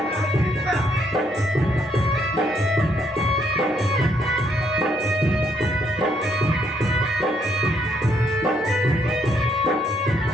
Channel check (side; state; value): both; normal; correlation 0.72